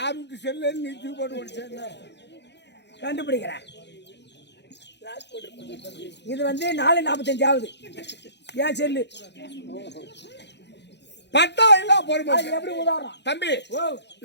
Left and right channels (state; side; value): late; right; 0.50 ms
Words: வீட்டு செல்லுன்னு நீ தூக்கி போட்டு ஓடிச்சேன் கண்டுபிடிக்கிறேன். இது வந்து 4:45 ஆகுது. ஏன் செல்லு பட்டா இல்ல பொறுமை. அது எப்படி உதாரணம் தம்பி ஓ